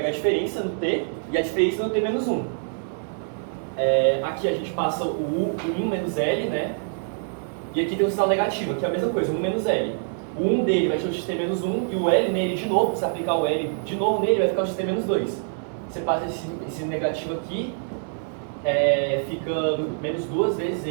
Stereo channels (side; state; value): left; silent; 62 dB below the other